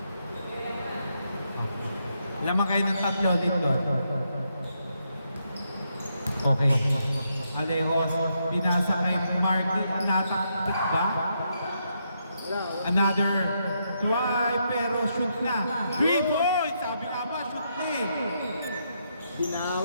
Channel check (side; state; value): both; inverted; correlation -0.79